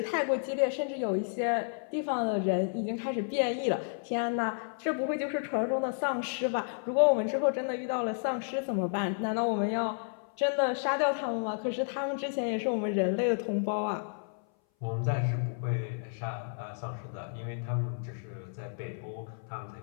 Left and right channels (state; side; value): silent; right; 57 dB below the other